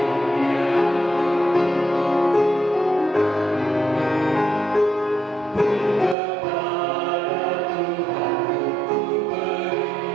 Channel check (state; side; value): drops out; left; at 6.2 s